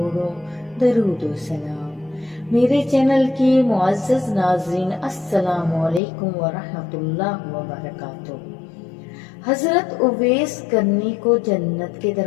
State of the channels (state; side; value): drops out; right; at 6.0 s